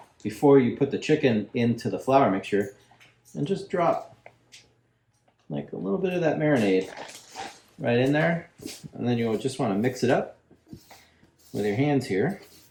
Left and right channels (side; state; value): both; identical; correlation 1.00